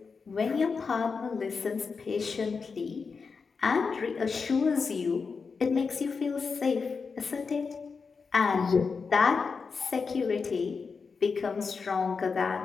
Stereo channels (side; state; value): right; quieter; 5.1 dB